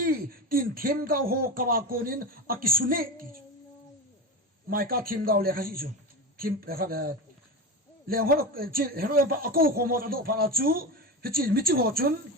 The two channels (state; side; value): normal; both; correlation 0.23